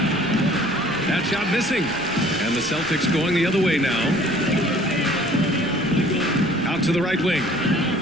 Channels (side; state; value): left; noise; rumble, 22 dB below the sound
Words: That shot missing. And the Celtics going the other way now. Out to the right wing.